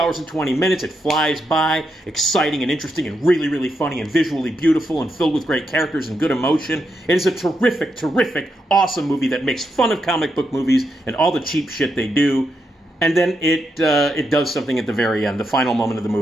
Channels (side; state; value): both; normal; correlation 0.83